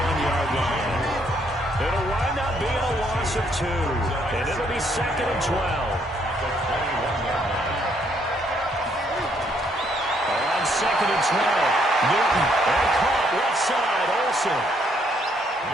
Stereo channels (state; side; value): normal; both; correlation 0.70